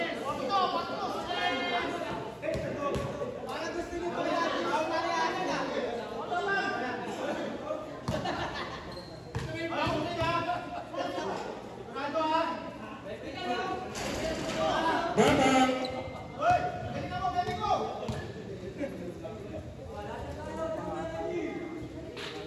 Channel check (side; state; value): both; identical; correlation 1.00